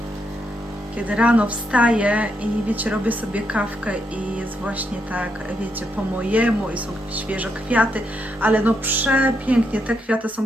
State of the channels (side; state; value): both; normal; correlation 0.80